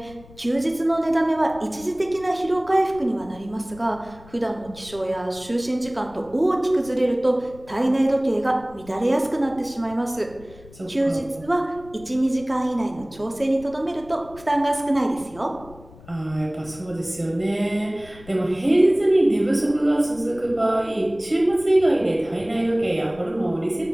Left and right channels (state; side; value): noise; left; rumble, 21 dB below the sound